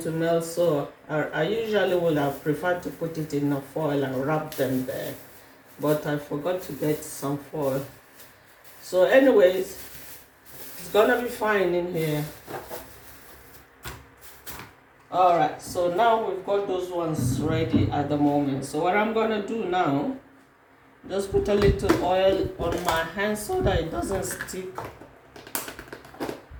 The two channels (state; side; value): identical; both; correlation 1.00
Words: to melt. So I usually would have preferred to put it in a foil and wrap them there, but I forgot to get some foil. So anyways, it's gonna be fine in here. Alright, so now we've got those ones ready at the moment. So what I'm gonna do now, just put a little oil on my hand so that it doesn't stick.